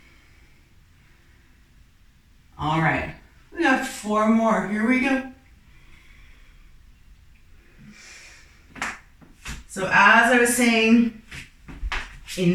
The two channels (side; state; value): both; identical; correlation 1.00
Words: All right, we got 4 more. Here we go. So as I was saying in